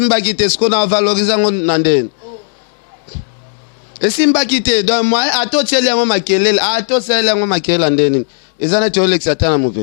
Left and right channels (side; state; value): right; silent; digital silence